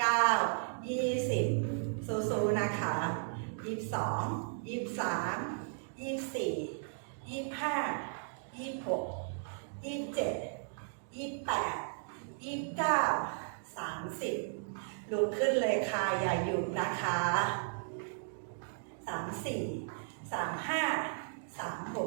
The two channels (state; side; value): silent; left; digital silence